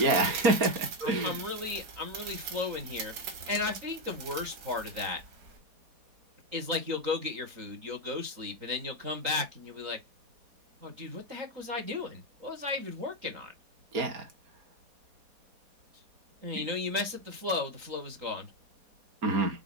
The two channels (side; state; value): left; late; 4.2 ms